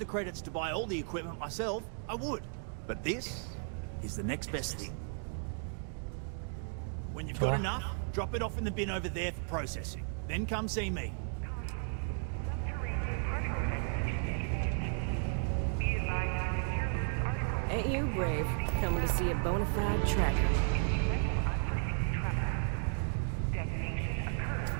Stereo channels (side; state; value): left; silent; 55 dB below the other